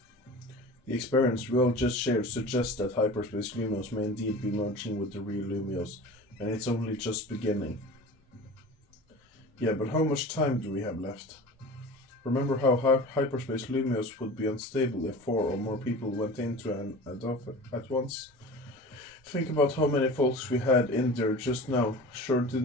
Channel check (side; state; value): both; normal; correlation 0.36